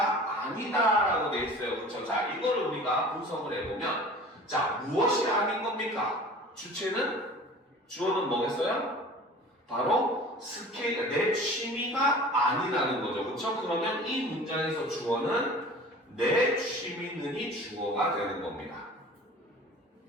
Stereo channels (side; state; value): both; normal; correlation 0.42